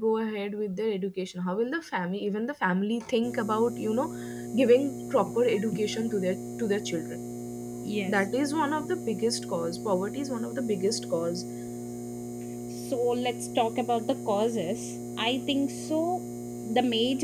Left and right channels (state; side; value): identical; both; correlation 1.00